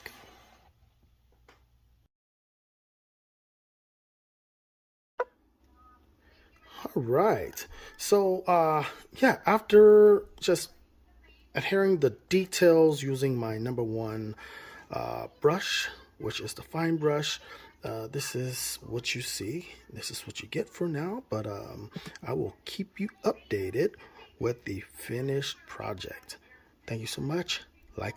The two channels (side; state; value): both; identical; correlation 1.00